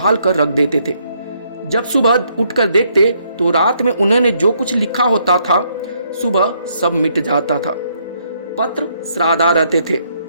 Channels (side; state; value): both; inverted; correlation -0.72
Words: कर रख देते थे। जब सुबह उठकर देखते तो रात में उन्होंने जो कुछ लिखा होता था सुबह सब मिट जाता था। पत्र श्राद्धा रहते थे।